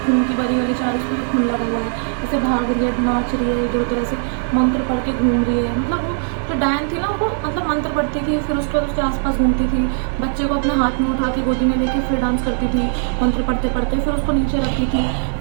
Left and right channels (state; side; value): silent; left; digital silence